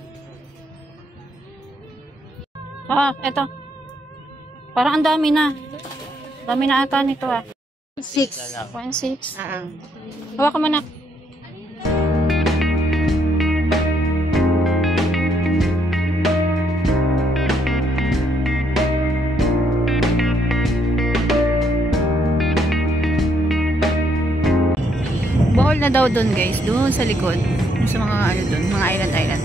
Ah, ito. Parang ang dami na. Dami na ata nito, ah. 1.6. Hawakan mo na. Bohol na daw doon, guys. Doon sa likod. Doon sa mga ano doon. Mga island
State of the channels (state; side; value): normal; both; correlation 0.73